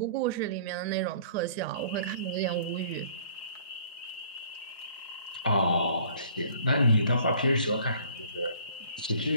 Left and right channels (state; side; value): inverted; both; correlation -0.54